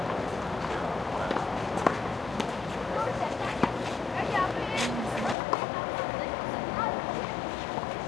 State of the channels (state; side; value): drops out; right; at 5.4 s